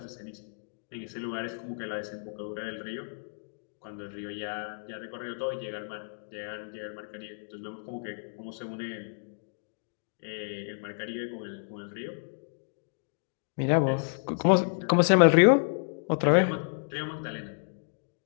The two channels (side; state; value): right; silent; digital silence